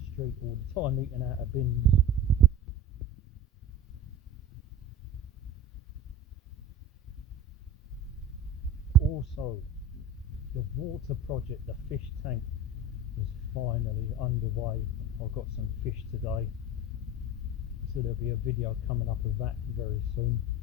street all the time eating out of bins. Also, the water project, the fish tank, is finally underway. I've got some fish today, so there'll be a video coming up of that very soon.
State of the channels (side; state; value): both; normal; correlation 0.33